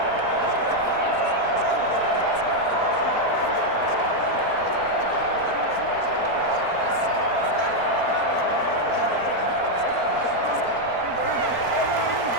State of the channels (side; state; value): left; late; 4.4 ms